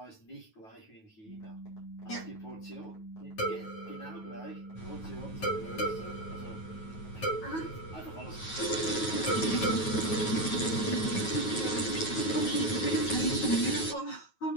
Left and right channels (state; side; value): late; right; 9.3 ms